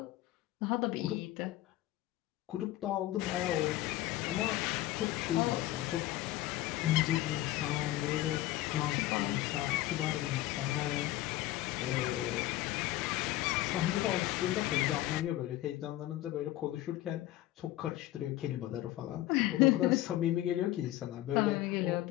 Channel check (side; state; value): right; quieter; 15.4 dB